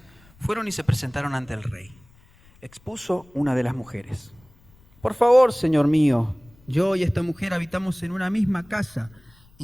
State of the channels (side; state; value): left; noise; rumble, 28 dB below the sound